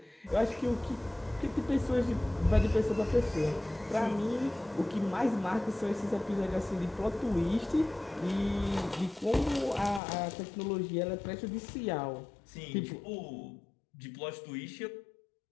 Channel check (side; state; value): right; drops out; at 10.0 s